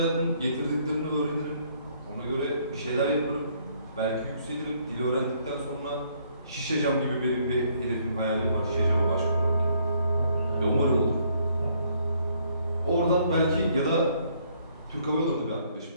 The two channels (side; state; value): both; inverted; correlation -0.67